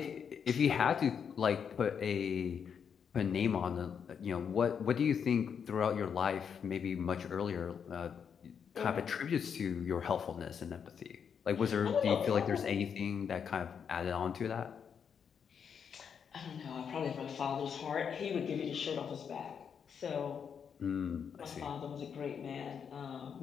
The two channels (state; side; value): quieter; right; 7.1 dB